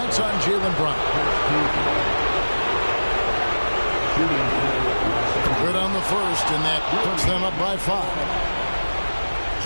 on Jaylen Brown. Good on the first, and that puts them up by 5.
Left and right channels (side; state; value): both; inverted; correlation -1.00